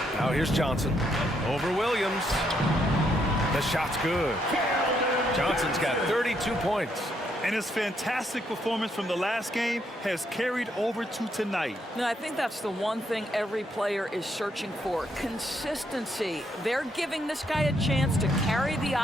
Now here's Johnson. Over Williams. The shot's good. Johnson's got 32 points. And his fantastic performance from the last game has carried over to tonight. No, I think that's the one thing every player is searching for. Consistency. They're giving this guy a chance to carry the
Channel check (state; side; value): normal; both; correlation 0.75